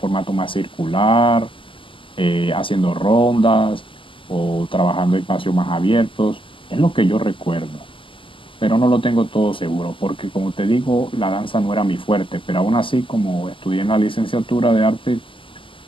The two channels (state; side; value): late; right; 0.25 ms